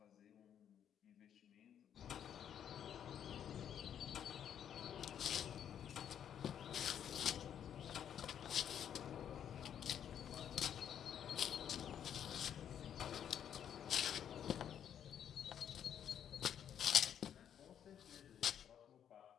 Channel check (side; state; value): right; quieter; 9.2 dB